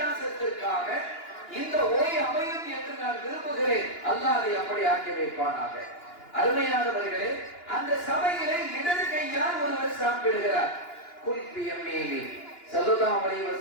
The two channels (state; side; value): late; right; 2.9 ms